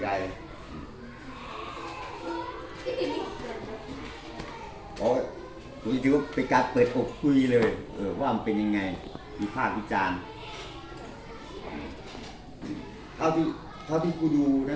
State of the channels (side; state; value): both; identical; correlation 1.00